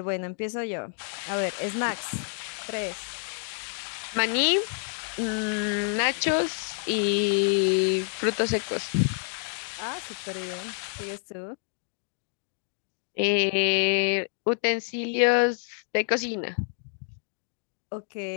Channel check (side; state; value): right; silent; 59 dB below the other